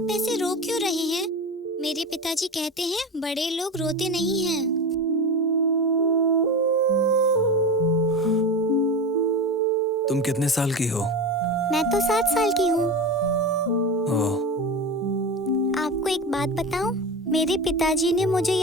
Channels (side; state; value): both; normal; correlation 0.25